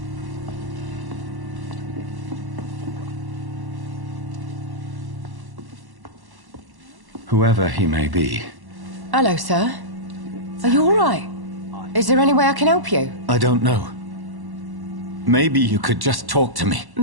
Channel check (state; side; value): late; left; 1.1 ms